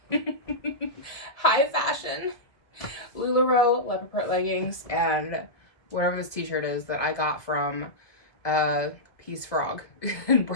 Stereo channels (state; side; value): late; right; 1.6 ms